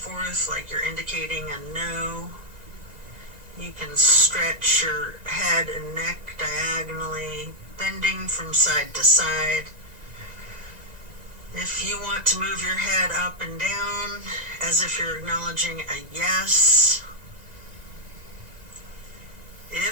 like you're indicating a no. You can stretch your head and neck diagonally, bending from side to side. If you want to move your head up and down as if you're acknowledging a yes.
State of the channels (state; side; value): late; left; 1.9 ms